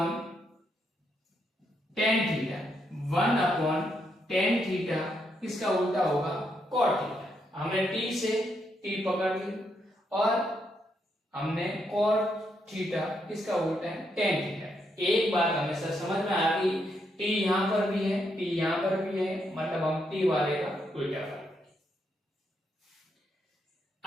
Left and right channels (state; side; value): normal; both; correlation 0.78